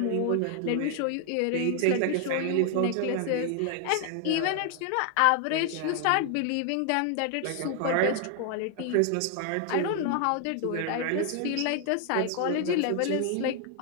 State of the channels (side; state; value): both; different; correlation 0.00